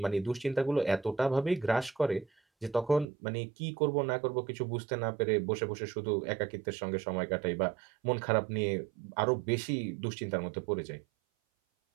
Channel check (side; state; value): left; drops out; at 3.1 s